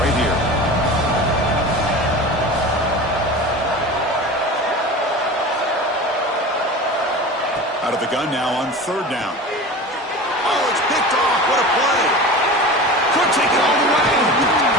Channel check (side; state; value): both; normal; correlation 0.33